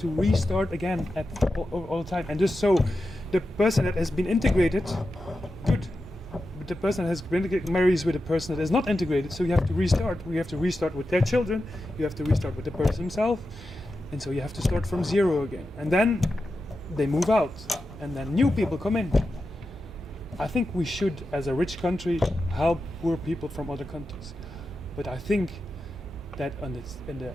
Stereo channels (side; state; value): both; normal; correlation 0.91